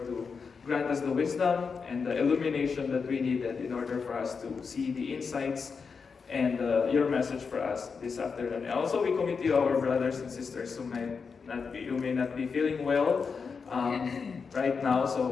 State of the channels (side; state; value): right; quieter; 5.4 dB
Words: to grant us the wisdom and the illumination that we needed in order for us to see the insights and your message for us this afternoon. And also we commit to you our brothers and sisters who may not be feeling well right now.